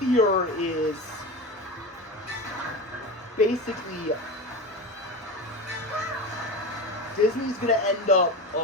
is basically Disney's going to end up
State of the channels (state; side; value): normal; both; correlation 0.25